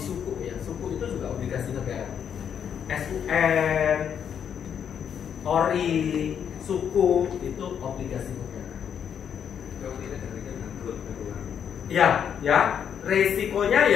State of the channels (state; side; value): quieter; right; 8.2 dB